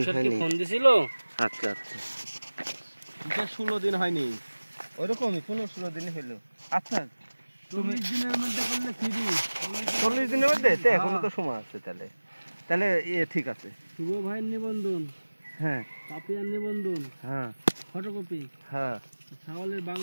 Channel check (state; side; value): inverted; both; correlation -1.00